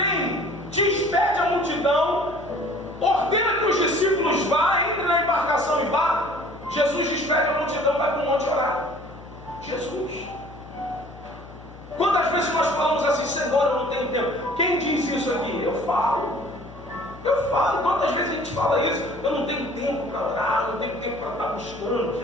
despede a multidão, ordena que os discípulos vá, entre na embarcação e vá. Jesus despede a multidão, vai para o monte orar. Jesus. Quantas vezes nós falamos assim, Senhor, eu não tenho tempo? Quem diz isso aqui? Eu falo. Quantas vezes a gente fala isso? Eu não tenho tempo para orar, eu não tenho tempo para estar buscando,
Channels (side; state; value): left; noise; hum, 18 dB below the sound